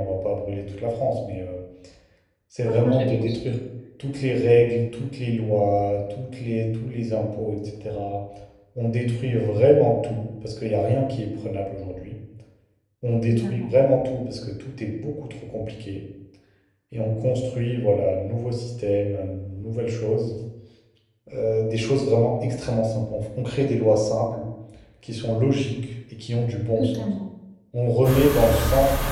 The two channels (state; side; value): identical; both; correlation 1.00